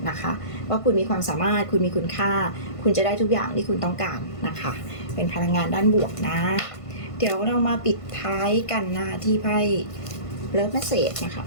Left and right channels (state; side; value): late; right; 1.5 ms